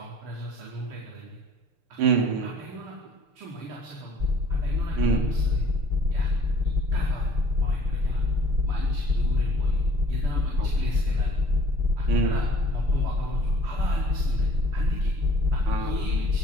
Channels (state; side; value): late; left; 6.8 ms